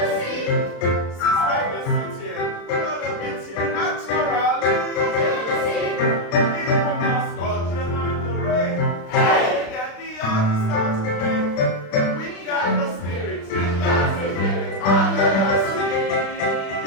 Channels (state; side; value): late; right; 36 ms